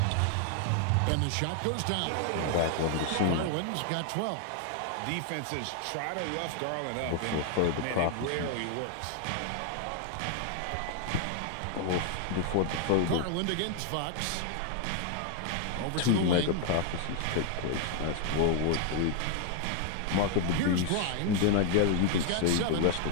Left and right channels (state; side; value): different; both; correlation 0.00